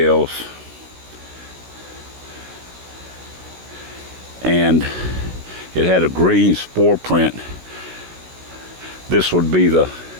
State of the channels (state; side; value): late; left; 16 ms